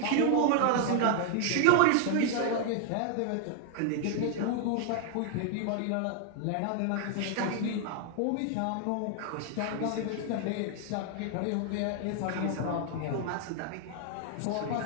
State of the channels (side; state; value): both; different; correlation 0.00